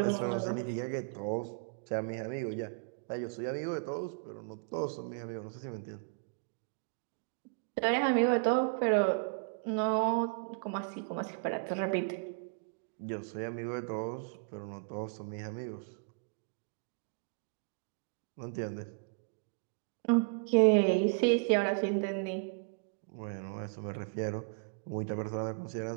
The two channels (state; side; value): quieter; left; 36.3 dB